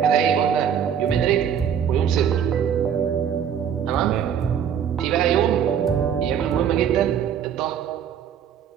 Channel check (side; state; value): left; quieter; 8.4 dB